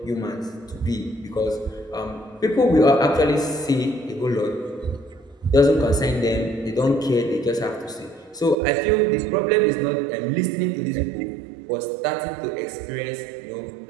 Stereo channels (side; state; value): left; drops out; at 8.6 s